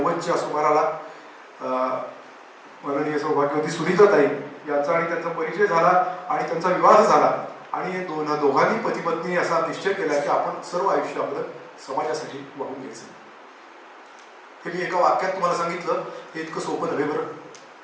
सुमाराला माननीय सौभाग्यवती सुनीताताई यांचा आणि त्यांचा परिचय झाला आणि त्यांचा विवाह झाला आणि दोघांनी पती पत्नी असा निश्चय केला की आपण सर्व आयुष्य आपलं समाजासाठी वाहून घ्यायचं. हे मी एका वाक्यात तुम्हाला सांगितलं, हे इतकं सोपं नव्हे बरं.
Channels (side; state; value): both; identical; correlation 1.00